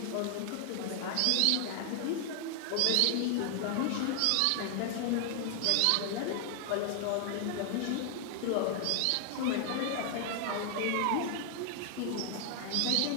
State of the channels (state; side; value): different; both; correlation 0.00